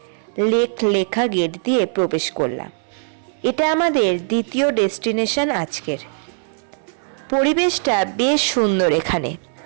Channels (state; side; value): silent; left; 65 dB below the other